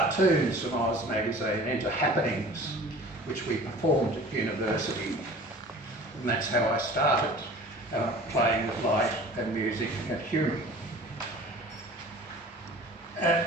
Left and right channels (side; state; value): both; normal; correlation 0.44